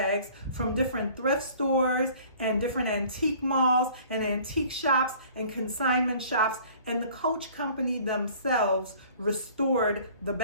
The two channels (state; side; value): inverted; both; correlation -0.51